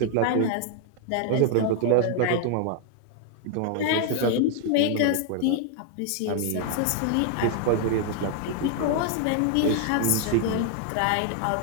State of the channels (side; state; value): both; different; correlation 0.00